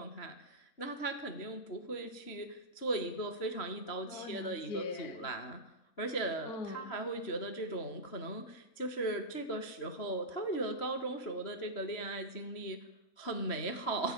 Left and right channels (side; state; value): right; late; 3.1 ms